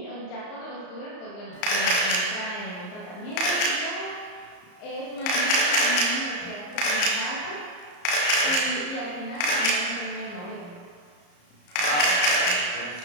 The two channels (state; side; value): late; right; 34 ms